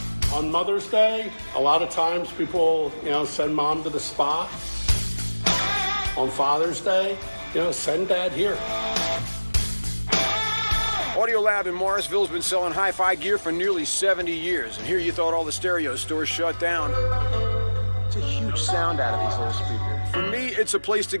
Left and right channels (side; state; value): both; inverted; correlation -1.00